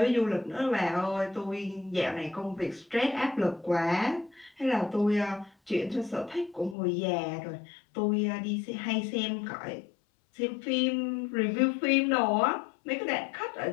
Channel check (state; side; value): drops out; right; at 6.8 s